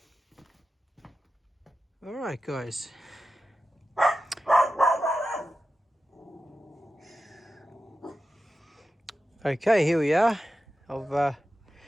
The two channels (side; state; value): both; normal; correlation 0.92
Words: All right, guys. Okay, here we are. I've